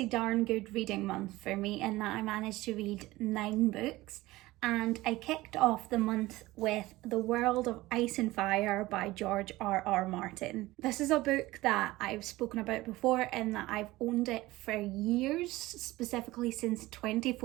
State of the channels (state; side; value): quieter; left; 18.6 dB